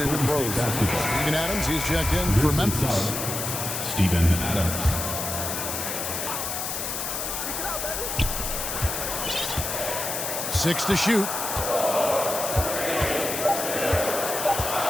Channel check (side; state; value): left; noise; hiss, 3 dB below the sound